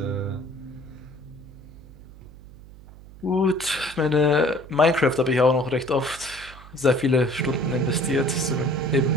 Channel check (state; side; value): noise; right; hum, 19 dB below the sound